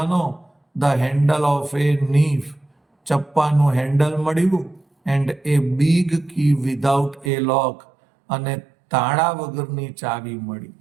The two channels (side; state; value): left; drops out; at 7.3 s